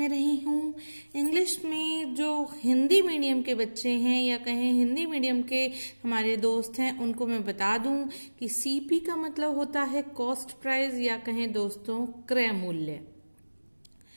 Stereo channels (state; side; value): inverted; both; correlation -1.00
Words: रही हूँ। इंग्लिश में जो हिंदी मीडियम के बच्चे हैं या कहें हिंदी मीडियम के हमारे दोस्त हैं, उनको मैं बता दूं कि सीपी का मतलब होता है कॉस्ट प्राइस या कहें दोस्तों क्रय मूल्य,